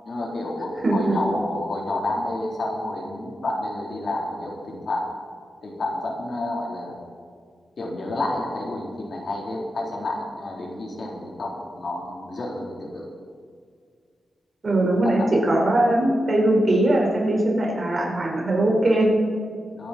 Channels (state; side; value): normal; both; correlation 0.88